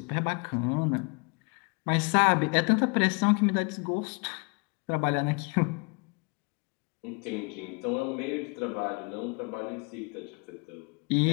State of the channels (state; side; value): quieter; right; 33.4 dB